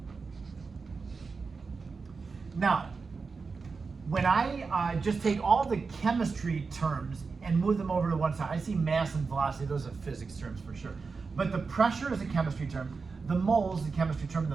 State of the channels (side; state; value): left; quieter; 4.7 dB